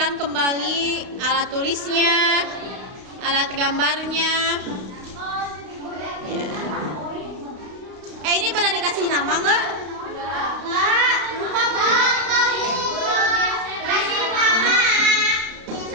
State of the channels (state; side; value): late; left; 32 ms